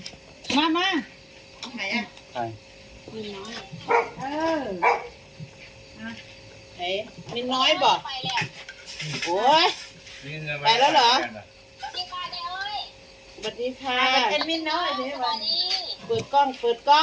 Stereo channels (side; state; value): both; identical; correlation 1.00